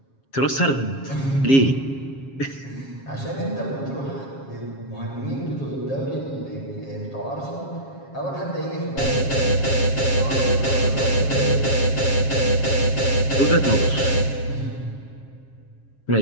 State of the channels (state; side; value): late; right; 7.4 ms